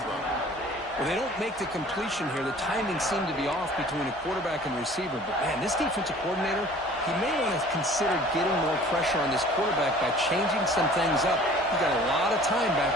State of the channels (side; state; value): both; normal; correlation 0.48